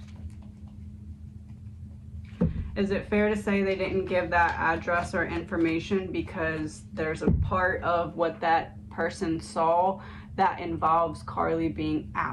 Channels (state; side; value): identical; both; correlation 1.00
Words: Is it fair to say they didn't give that address or information because there's a part of what that person saw that involves KARLIE being